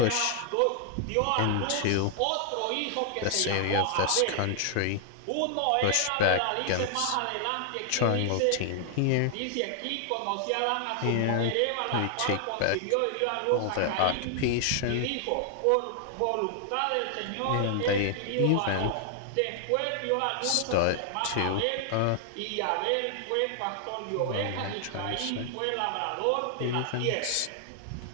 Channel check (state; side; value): different; both; correlation 0.00